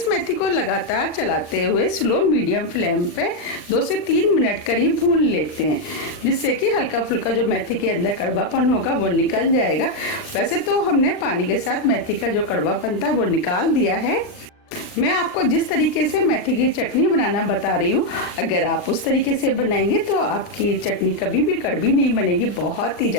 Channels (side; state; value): right; late; 39 ms